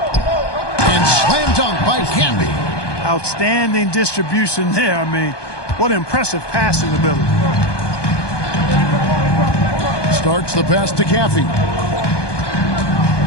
slam dunk by Canby. Outstanding distribution there. I mean, what impressive passing ability. Starts the pass to Caffey.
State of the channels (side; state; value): right; late; 1.2 ms